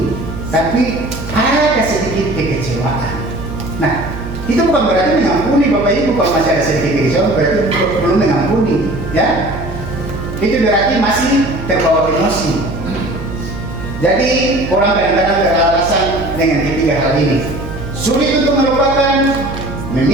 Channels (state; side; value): noise; right; hum, 9 dB below the sound